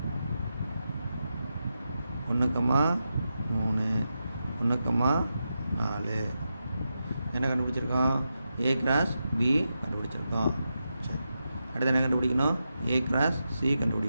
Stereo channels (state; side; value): inverted; both; correlation -0.88